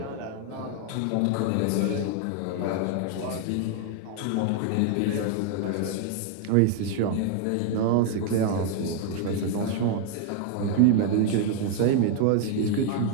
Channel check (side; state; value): both; different; correlation 0.00